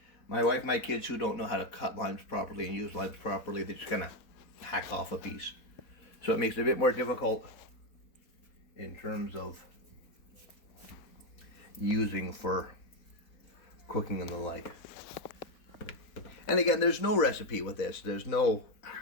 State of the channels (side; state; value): right; late; 4.1 ms